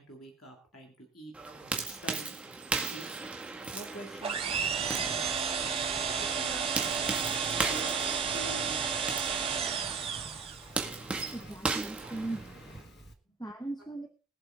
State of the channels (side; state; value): left; quieter; 5.0 dB